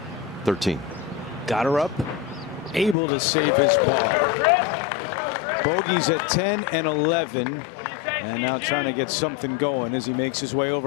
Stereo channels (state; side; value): drops out; right; at 3.0 s